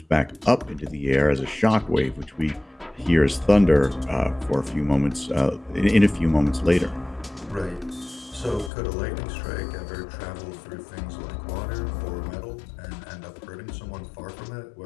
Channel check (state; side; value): drops out; right; at 8.7 s